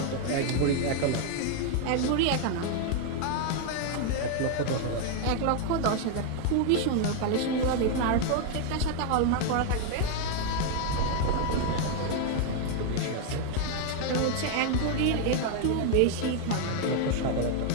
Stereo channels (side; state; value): both; different; correlation 0.00